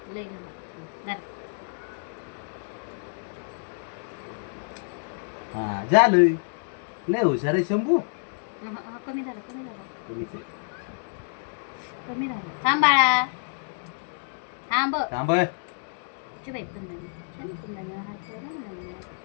लय झालं. हा झालं. लय हुशार आहे शंभू. कमी झालं तुम्हीच आहे. कमी झालं. थांब बाळा थांब. थांब. बाई कुंदन हात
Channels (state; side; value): silent; right; digital silence